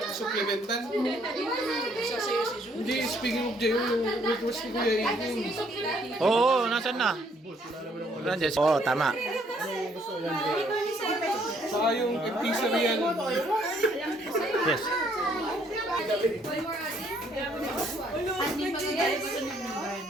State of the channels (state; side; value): normal; both; correlation 0.66